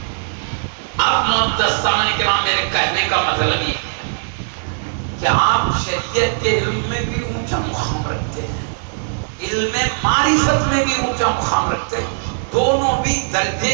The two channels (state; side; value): silent; left; 67 dB below the other